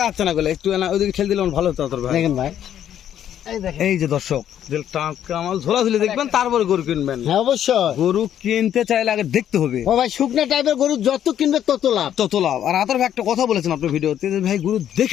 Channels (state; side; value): quieter; right; 10.3 dB